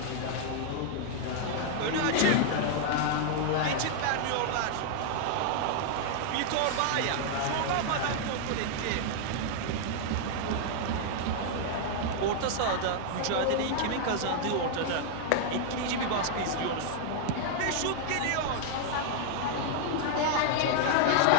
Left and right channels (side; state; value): both; different; correlation 0.00